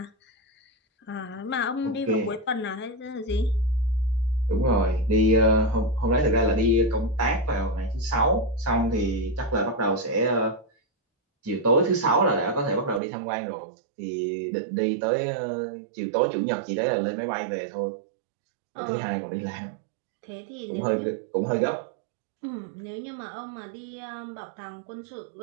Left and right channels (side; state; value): left; drops out; at 13.0 s